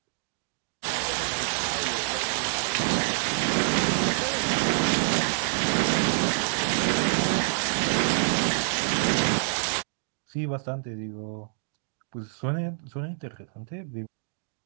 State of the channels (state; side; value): silent; left; digital silence